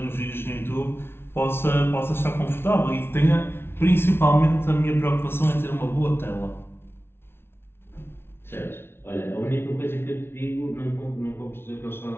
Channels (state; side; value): late; right; 0.12 ms